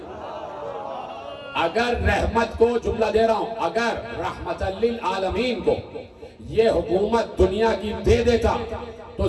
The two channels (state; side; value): identical; both; correlation 1.00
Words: اگر رحمت کو، جملہ دے رہا ہوں، اگر رحمت للعالمین کو یہ حکومت دنیا کی دے دیتا تو